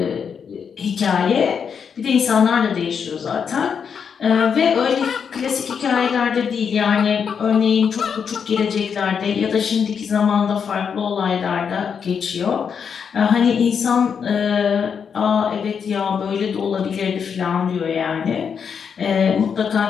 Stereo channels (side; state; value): right; quieter; 6.8 dB